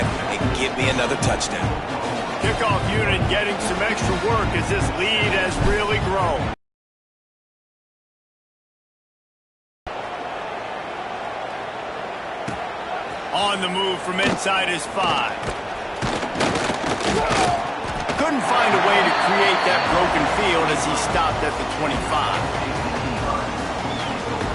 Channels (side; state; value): both; identical; correlation 1.00